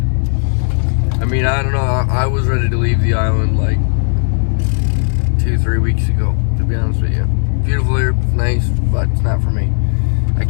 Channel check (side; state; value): right; silent; 69 dB below the other